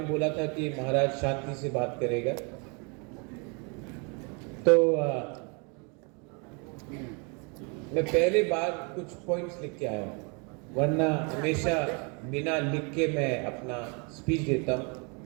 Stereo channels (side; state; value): left; quieter; 33.6 dB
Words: बोला था कि महाराज शांति से बात करेगा, तो मैं पहले बार कुछ पॉइंट्स लिख के आया हूँ, वरना हमेशा बिना लिख के मैं अपना स्पीच देता हूँ।